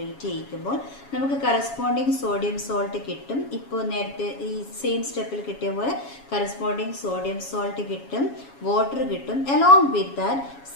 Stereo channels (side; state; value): right; late; 7.2 ms